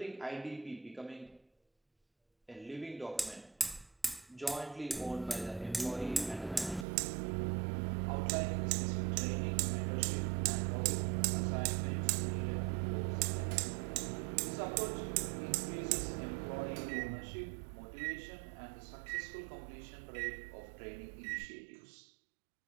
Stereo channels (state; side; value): drops out; left; at 6.9 s